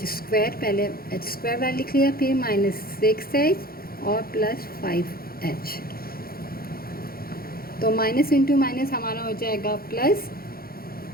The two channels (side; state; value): right; late; 0.43 ms